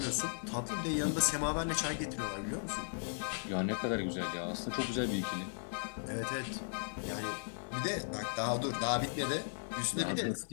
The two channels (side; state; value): right; silent; digital silence